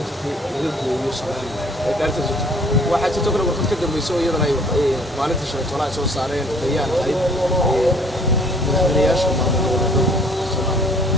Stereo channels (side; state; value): both; normal; correlation 0.56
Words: jirtay laga gooyo Soomaaliya ee daarta waxa jirto kale warqad ka dambayso iyadana ay maalinta shalay toona soo saareen bayaan ahayd madaxweynayaasha maamulka Soomaaliya